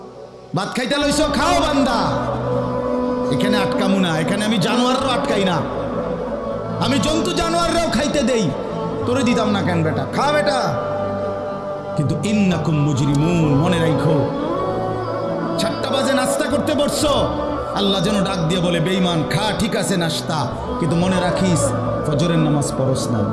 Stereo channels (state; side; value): identical; both; correlation 1.00